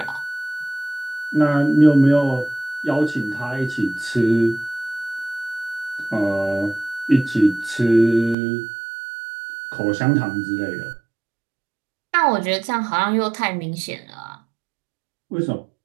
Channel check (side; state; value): left; drops out; at 8.3 s